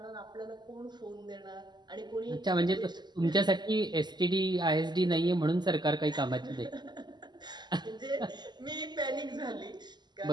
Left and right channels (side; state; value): left; late; 0.21 ms